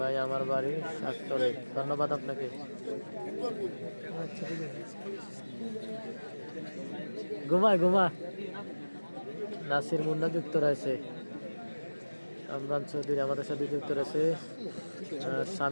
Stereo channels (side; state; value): both; inverted; correlation -1.00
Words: আমার বাড়ি শাকতলে, ধন্যবাদ আপনাকে। ঘুমা নাসির মুন্না যুক্ত রয়েছে। আমরান চৌধুরী আমাদের সাথে যুক্ত রয়েছে।